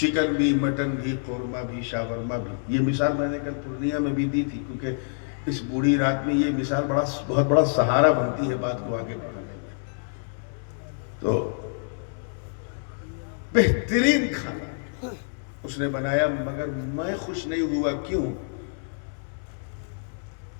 بھی، مٹن بھی، قورمہ بھی، شاورما بھی۔ یہ مثال میں نے کل پورنیہ میں بھی دی تھی، کیونکہ اس بوڑھی رات میں یہ مثال بہت بڑا سہارا بنتی ہے بات کو آگے بڑھانے میں۔ تو بہترین کھانا اس نے بنایا، مگر میں خوش نہیں ہوا۔ کیوں؟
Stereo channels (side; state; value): right; silent; 60 dB below the other